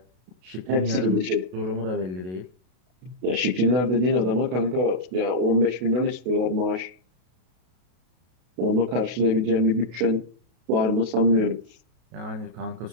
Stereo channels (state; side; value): late; left; 32 ms